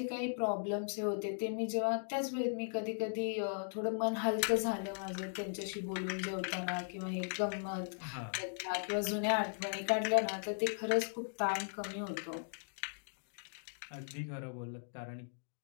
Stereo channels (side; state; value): right; silent; digital silence